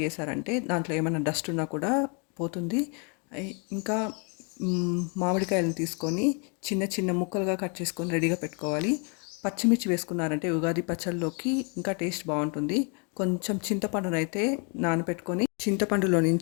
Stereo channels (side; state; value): right; quieter; 36.1 dB